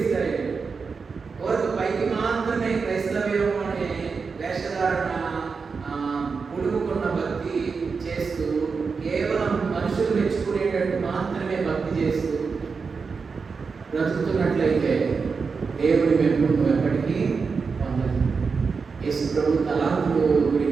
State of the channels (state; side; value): quieter; left; 5.1 dB